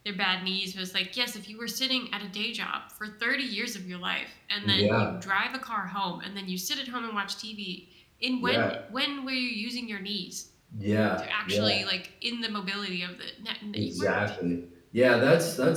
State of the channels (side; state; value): both; identical; correlation 1.00